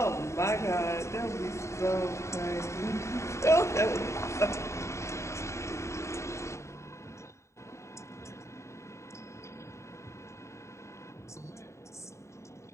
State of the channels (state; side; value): late; right; 0.14 ms